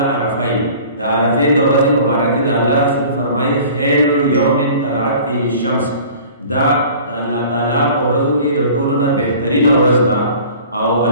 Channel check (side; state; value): both; inverted; correlation -0.46